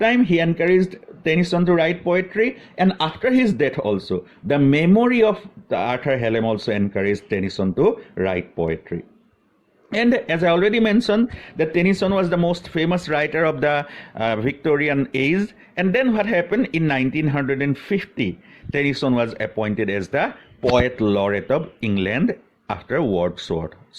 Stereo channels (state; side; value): identical; both; correlation 1.00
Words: he encouraged Tennyson to write poetry, and after his death also, the memory of Arthur Hallam also encouraged Tennyson to write poetry. And as I already mentioned, that Tennyson was the most famous writer of the Victorian age. And then what happened? In 1950, Tennyson was appointed as the Poet Laureate of England after Wordsworth.